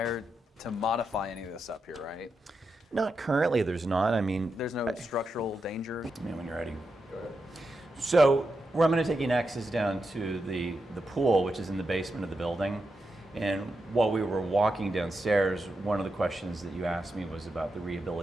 to modify any of this up here, right? Not currently, there's not. I mean, There's no structural danger. when you're ready. So where I'm going to take you next is down to the pool, which is in the basement of the building. And while we were walking downstairs, one of the questions that you asked me was about the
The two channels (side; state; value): both; normal; correlation 0.86